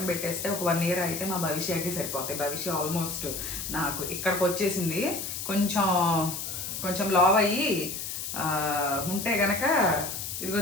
పెట్టేస్తే ఒక 1 year అయితే మా భవిష్యత్కి సరిపోతాయి. భవిష్య ఆల్మోస్ట్ నాకు ఇక్కడికి వచ్చేసింది. కొంచెం లావ్ అయ్యి ఉంటే గనక ఇదిగో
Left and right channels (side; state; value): left; noise; hiss, 5 dB below the sound